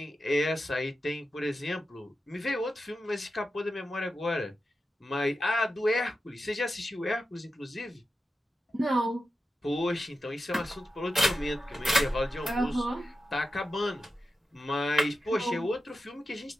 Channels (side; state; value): both; normal; correlation 0.91